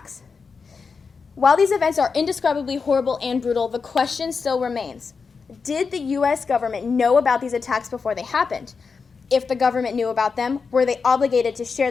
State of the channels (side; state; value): right; quieter; 5.1 dB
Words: While these events are indescribably horrible and brutal, the question still remains: did the U.S. government know about these attacks before they happened? If the government knew about them, were they obligated to share